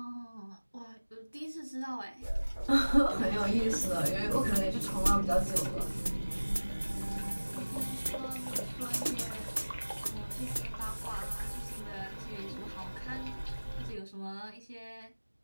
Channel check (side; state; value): both; inverted; correlation -1.00